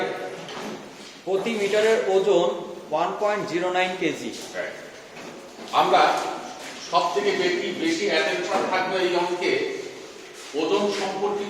প্রতি মিটারের ওজন 1.09 কেজি। আমরা সব থেকে বেশি অ্যাটেনশন থাকবে এই অঙ্কে ওজন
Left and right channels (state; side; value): identical; both; correlation 1.00